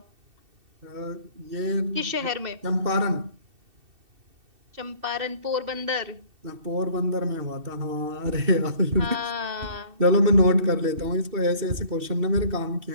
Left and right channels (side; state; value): left; late; 2.7 ms